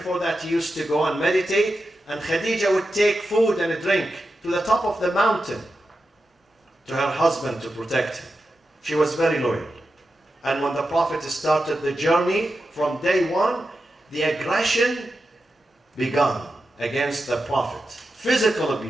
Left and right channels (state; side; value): normal; both; correlation 0.90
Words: that, he used to go and meditate, and Khadijah would take food and a drink to the top of the mountain to her husband to protect him. She was very loyal. And when the Prophet started the journey, from day one, the aggression began against the Prophet. Physical